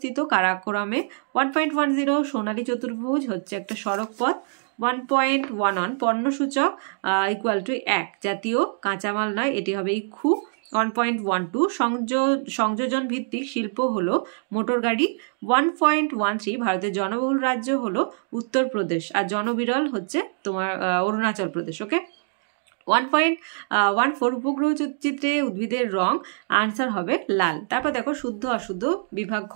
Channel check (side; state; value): left; silent; digital silence